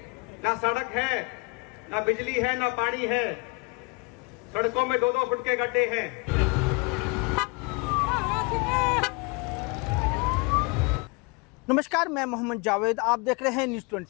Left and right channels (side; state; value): right; quieter; 29.6 dB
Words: ना सड़क है, ना बिजली है, ना पानी है। सड़कों में 2-2 फुट के गड्ढे हैं। नमस्कार, मैं मोहम्मद जावेद, आप देख रहे हैं न्यूज़